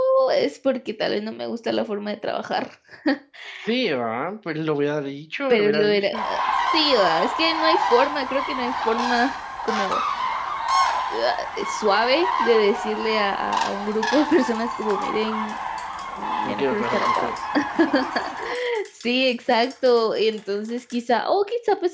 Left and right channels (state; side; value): identical; both; correlation 1.00